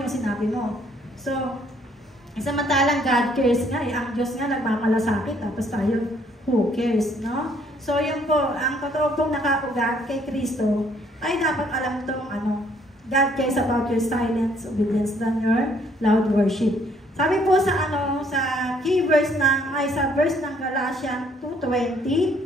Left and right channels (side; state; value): both; normal; correlation 0.65